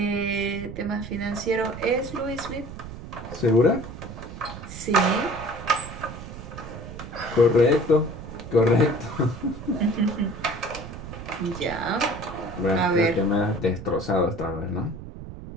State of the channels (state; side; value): noise; right; rumble, 12 dB below the sound